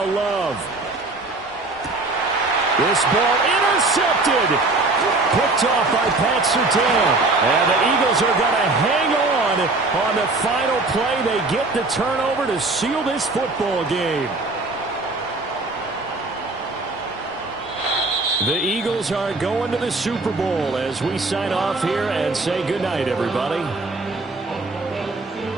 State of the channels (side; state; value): left; quieter; 3.3 dB